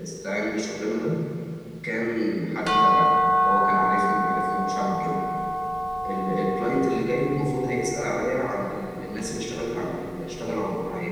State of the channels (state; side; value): identical; both; correlation 1.00